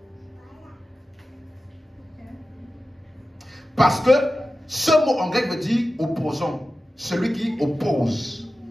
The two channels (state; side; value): normal; both; correlation 0.94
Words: Parce que ce mot en grec veut dire opposant, celui qui oppose.